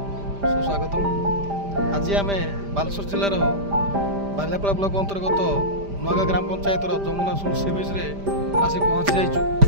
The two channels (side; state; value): left; late; 5.0 ms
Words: सुस्वागत। आज आम बालेश्वर जिलार बालियापाड़ा ब्लॉक अंतर्गत नुआगाँ ग्राम पंचायत जमुना सुल सी बीच आसी पहुँची जाइछु।